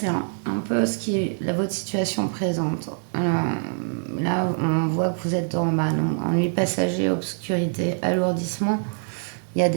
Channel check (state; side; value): silent; left; digital silence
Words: un peu votre situation présente. Là, on voit que vous êtes dans ennui passager, obscurité, alourdissement. Il y a